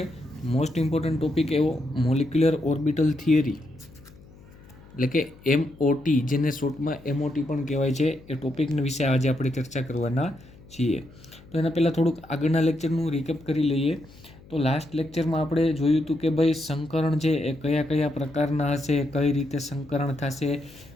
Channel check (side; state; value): left; noise; hum, 23 dB below the sound